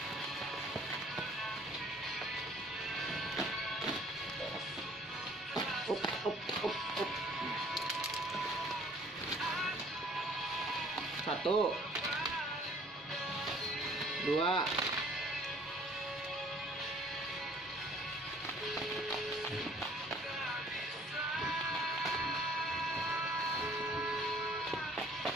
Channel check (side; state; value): both; normal; correlation 0.56